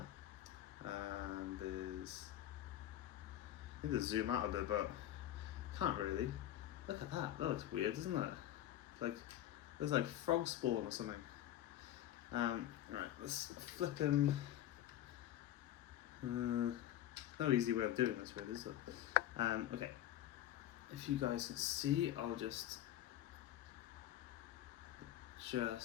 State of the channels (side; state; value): right; quieter; 12.6 dB